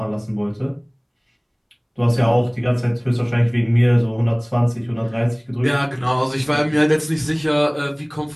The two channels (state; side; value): identical; both; correlation 1.00